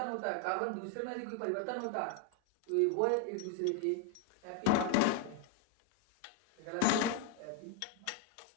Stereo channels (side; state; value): both; different; correlation 0.01